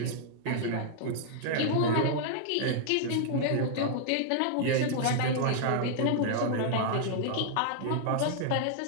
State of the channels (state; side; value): different; both; correlation -0.01